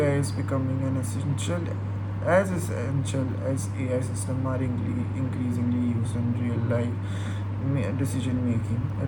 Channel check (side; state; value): both; identical; correlation 1.00